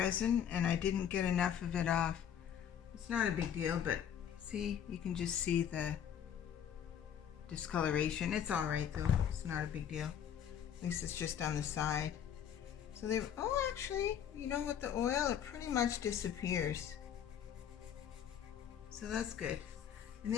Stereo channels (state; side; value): quieter; right; 9.1 dB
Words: and I didn't get enough of it off. It's not a big deal, but see, you can just see the discoloration. It's all right though. It's not a big deal. At least it's just on the side. So they, actually, you know, with the oil, it pretty much disappears. So that's good. And